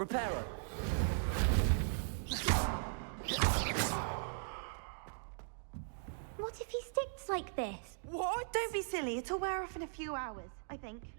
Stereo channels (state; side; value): silent; left; digital silence